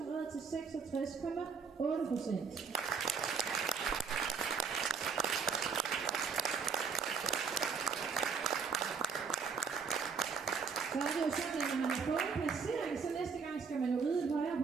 red til 66,8%. Så er det jo sådan, at når man har fået en placering, så næste gang skal man jo ride et højere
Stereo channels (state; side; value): quieter; left; 5.7 dB